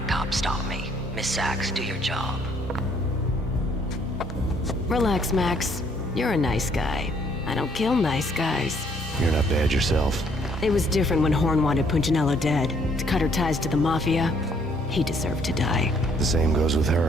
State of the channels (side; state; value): both; normal; correlation 0.65